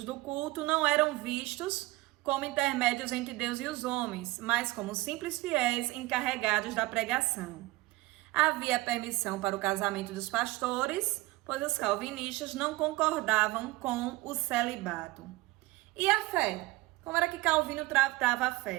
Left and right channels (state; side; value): quieter; left; 20.3 dB